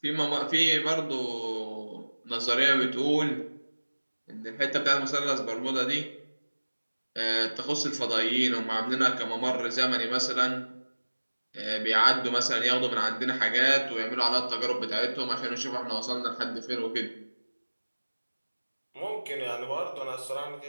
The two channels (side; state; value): both; inverted; correlation -1.00